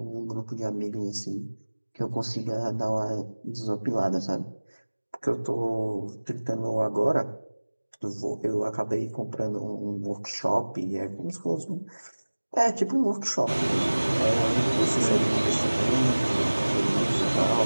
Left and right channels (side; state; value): both; inverted; correlation -1.00